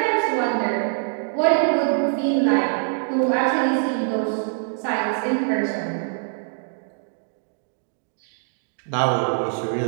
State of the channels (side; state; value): left; silent; digital silence